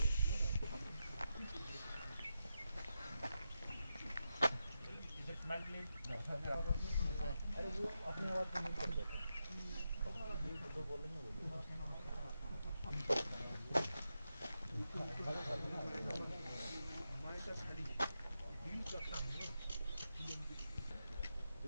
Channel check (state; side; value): inverted; both; correlation -0.87